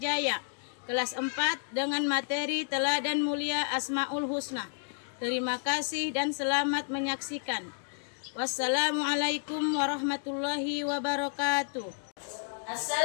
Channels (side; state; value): right; silent; digital silence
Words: kelas 4 dengan materi Teladan Mulia Asmaul Husna. Terima kasih dan selamat menyaksikan. Wassalamualaikum warahmatullahi wabarakatuh.